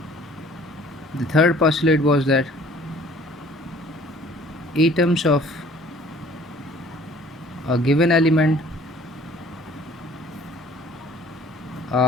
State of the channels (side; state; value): both; normal; correlation 0.53